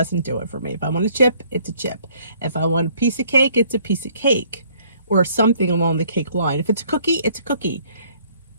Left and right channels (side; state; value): both; inverted; correlation -0.62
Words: do it for me. If I want a chip, it's a chip. If I want a piece of cake, it's a piece of cake, or something along the cake line. If it's a cookie, it's a cookie.